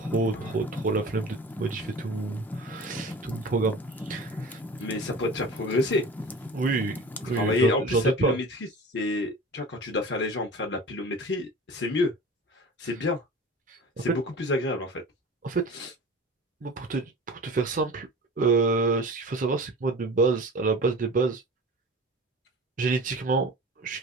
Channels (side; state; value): both; normal; correlation 0.38